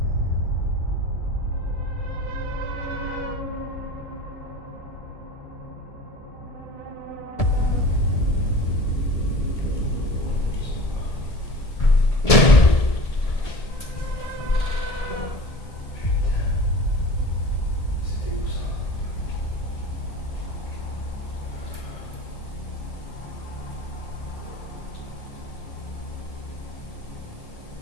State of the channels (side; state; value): right; late; 1.7 ms